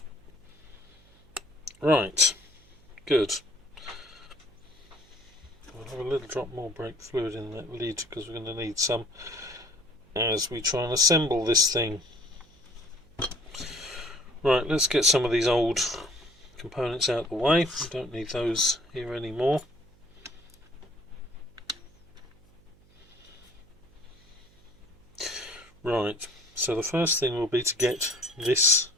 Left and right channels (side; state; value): right; noise; hum, 28 dB below the sound